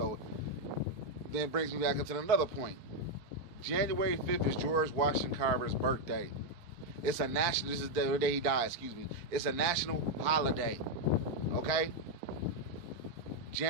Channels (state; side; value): late; left; 4.4 ms